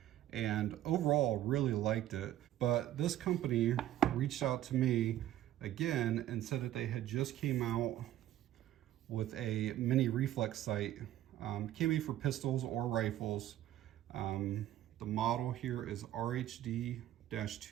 and overall really liked it, but this company reached out to me again and said that they had just came out with a mini reflex sight. Can be for pistols or rifles. The model here is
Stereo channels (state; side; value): quieter; left; 13.1 dB